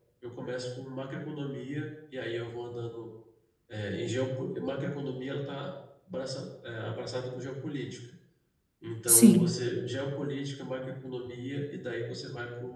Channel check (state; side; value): identical; both; correlation 1.00